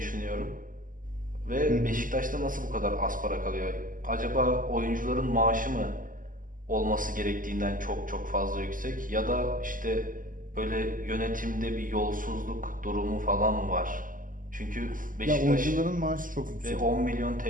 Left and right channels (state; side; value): late; left; 0.39 ms